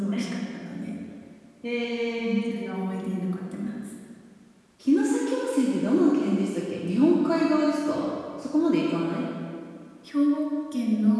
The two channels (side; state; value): both; identical; correlation 1.00